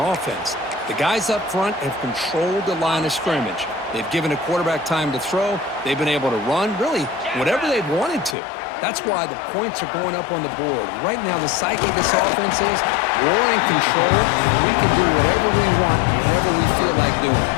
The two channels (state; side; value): drops out; right; at 8.3 s